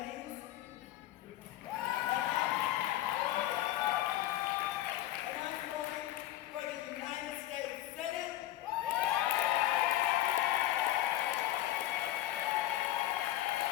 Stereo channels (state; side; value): quieter; right; 14.5 dB